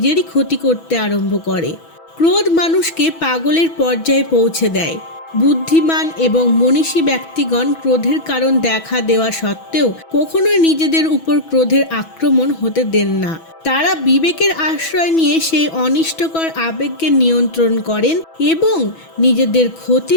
ক্ষতি করতে আরম্ভ করে। ক্রোধ মানুষকে পাগলের পর্যায়ে পৌঁছে দেয়। বুদ্ধিমান এবং মনীষী ব্যক্তিগণ ক্রোধের কারণ দেখা দেওয়া সত্ত্বেও কখনোই নিজেদের উপর ক্রোধের আক্রমণ হতে দেন না। তারা বিবেকের আশ্রয় নিয়ে সেই অনিষ্টকর আবেগকে নিয়ন্ত্রণ করেন এবং নিজেদের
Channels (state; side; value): late; right; 6.1 ms